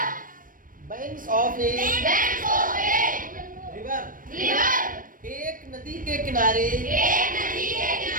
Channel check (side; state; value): left; late; 0.40 ms